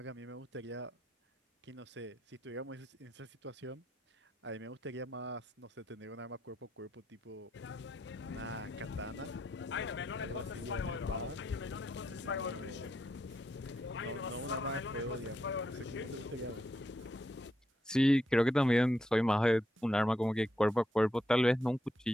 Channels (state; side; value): normal; both; correlation 0.81